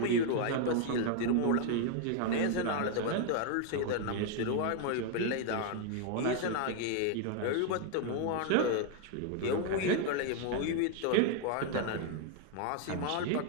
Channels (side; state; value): both; different; correlation 0.00